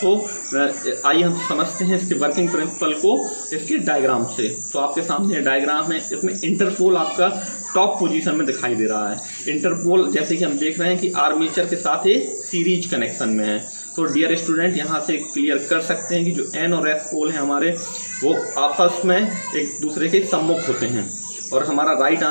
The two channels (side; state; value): both; inverted; correlation -1.00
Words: आइए हम समझते हैं इसके वर्किंग प्रिंसिपल को इसके डायग्राम से। तो आपके सामने डायग्राम है, इसमें इंटरपोल आपका टॉप पोजीशन में दिखाई दे रहा है। इंटरपोल जैसे कि हम देख रहे हैं कि आर्मेचर के साथ ये सीरीज कनेक्शन में है। तो डियर स्टूडेंट यहाँ से क्लियर कर सकते हैं कि जो N और S पोल हैं हमारे वो आपस में एक दूसरे के सम्मुख होते हैं, और हमारा राइट